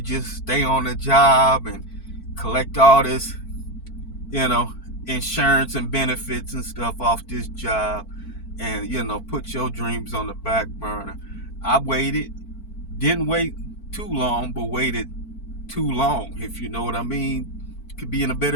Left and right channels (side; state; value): right; late; 4.5 ms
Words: just stay on the job and collect all this, insurance and benefits and stuff off this job and, put your dreams on the back burner. I waited, didn't wait too long, but waited too long, if you know what I mean. Could be in a